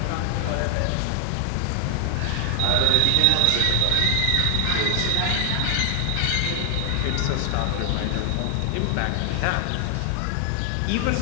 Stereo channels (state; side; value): different; both; correlation 0.00